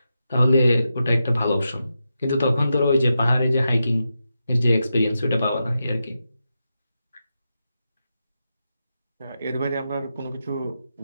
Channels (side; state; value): both; inverted; correlation -0.88